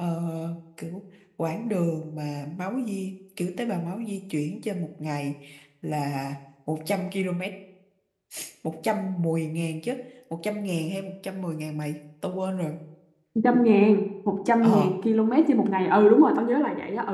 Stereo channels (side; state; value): both; identical; correlation 1.00